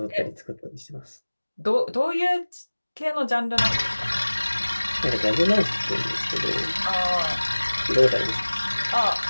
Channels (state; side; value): inverted; both; correlation -1.00